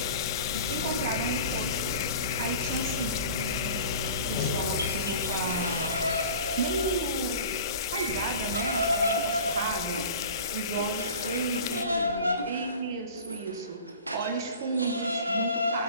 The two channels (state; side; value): inverted; both; correlation -0.40